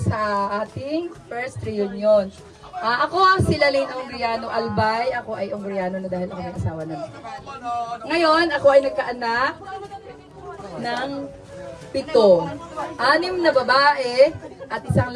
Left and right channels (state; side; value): identical; both; correlation 1.00